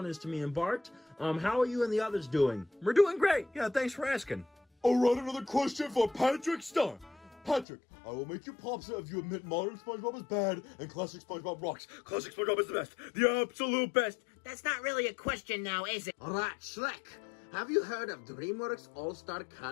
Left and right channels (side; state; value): right; drops out; at 7.7 s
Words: is to me and Bart. How are you and the others doing? We're doing great. Yeah, thanks for asking. All right, another question for Patrick Starr. Patrick, I will make you popsa if you admit modern SpongeBob is bad and classic SpongeBob rocks. Classic SpongeBob is the best. The absolute best. That's not really a question now, is it? All right, Shrek. Have you heard of DreamWorks All-Star